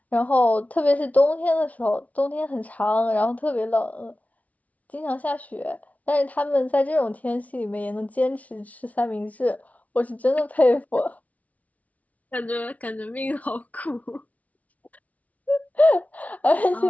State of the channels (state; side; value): late; right; 0.070 ms